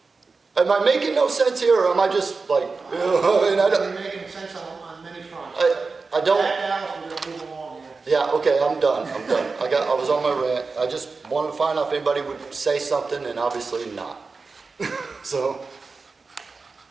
Am I making no sense here, or am I just like, You're making sense on many fronts. I don't. Back out, we're gonna move along here. Yeah, okay, I'm done. I was on my rant. I just wanted to find out if anybody would say something, and obviously not. So.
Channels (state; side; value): quieter; left; 4.3 dB